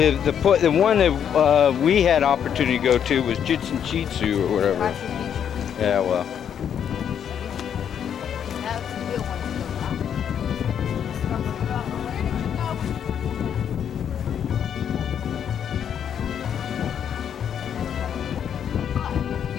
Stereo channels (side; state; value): right; quieter; 8.6 dB